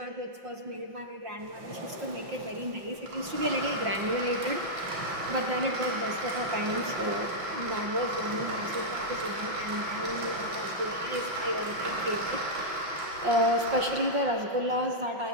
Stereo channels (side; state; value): left; late; 5.6 ms